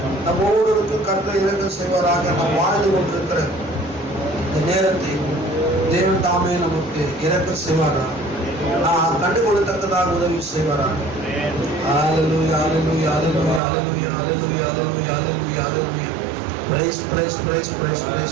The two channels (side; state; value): left; drops out; at 13.6 s